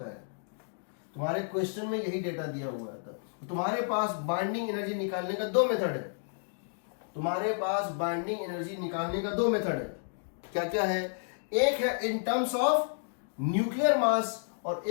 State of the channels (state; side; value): silent; right; digital silence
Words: है, तुम्हारे क्वेश्चन में यही डेटा दिया हुआ था। तो तुम्हारे पास बाइंडिंग एनर्जी निकालने का 2 मेथड है, तुम्हारे पास बाइंडिंग एनर्जी निकालने का 2 मेथड है। क्या क्या है, एक है इन टर्म्स ऑफ न्यूक्लियर मास और